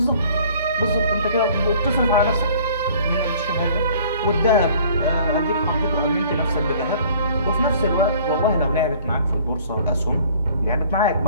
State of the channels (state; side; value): inverted; both; correlation -0.53